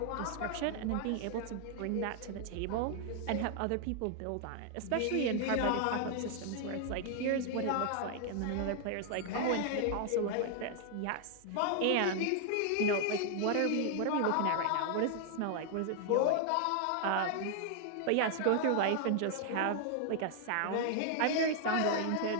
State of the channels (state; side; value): different; both; correlation 0.00